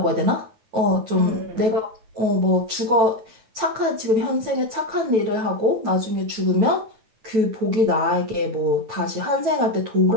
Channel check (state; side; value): late; left; 9.1 ms